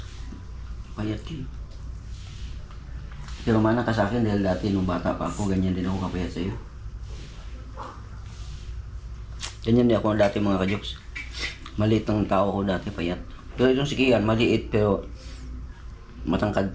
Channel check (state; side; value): identical; both; correlation 1.00